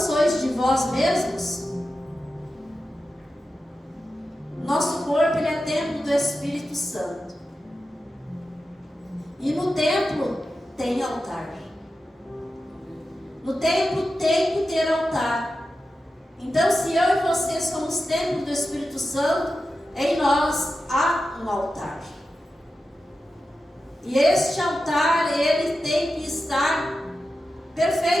de vós mesmos? Nosso corpo, ele é templo do Espírito Santo. E no templo tem altar. No templo tem que ter altar. Então, se eu e você somos templo do Espírito Santo, em nós há um altar. E este altar, ele tem que estar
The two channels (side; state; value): both; normal; correlation 0.92